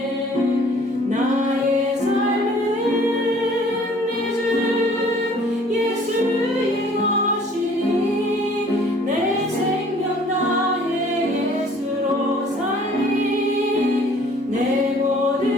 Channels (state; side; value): normal; both; correlation 0.55